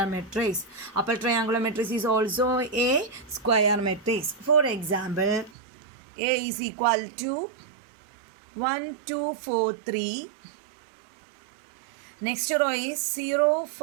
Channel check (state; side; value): drops out; left; at 5.5 s